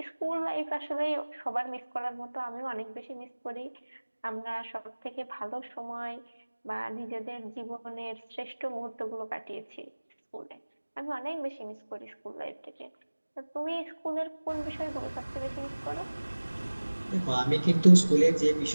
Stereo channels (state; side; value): inverted; both; correlation -1.00